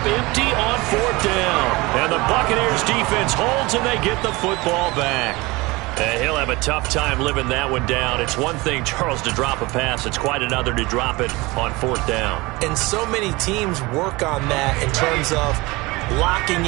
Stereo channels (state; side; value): quieter; left; 22.9 dB